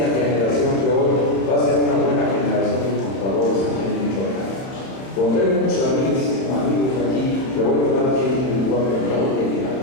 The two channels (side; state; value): right; late; 31 ms